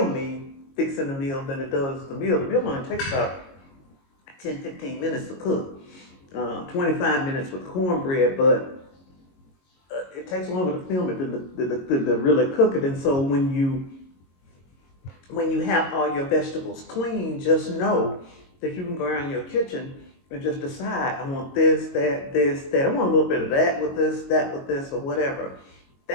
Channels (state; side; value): late; right; 22 ms